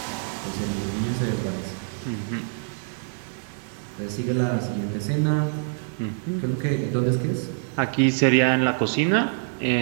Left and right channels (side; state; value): left; silent; 61 dB below the other